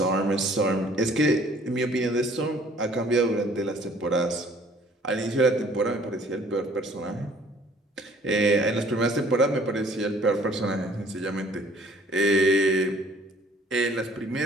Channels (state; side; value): normal; both; correlation 0.56